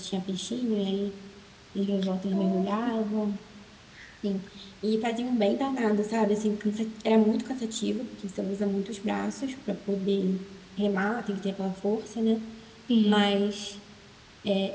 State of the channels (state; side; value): identical; both; correlation 1.00